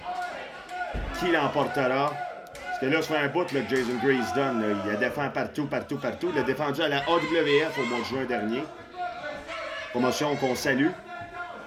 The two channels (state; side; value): identical; both; correlation 1.00